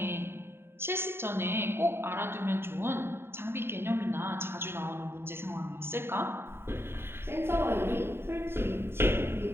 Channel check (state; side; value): late; left; 0.11 ms